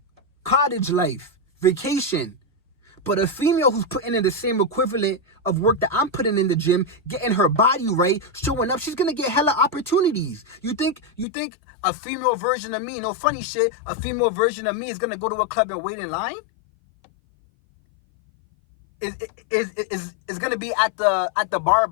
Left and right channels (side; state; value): right; drops out; at 11.2 s